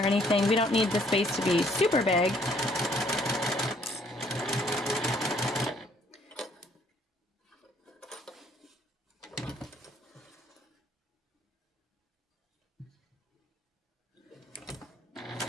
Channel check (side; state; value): both; normal; correlation 0.64